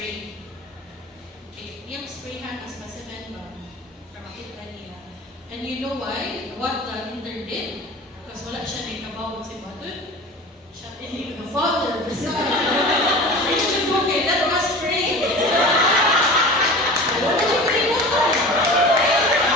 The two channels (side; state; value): both; normal; correlation 0.36